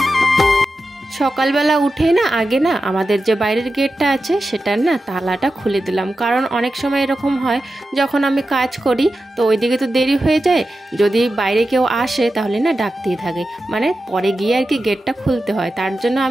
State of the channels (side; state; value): both; normal; correlation 0.91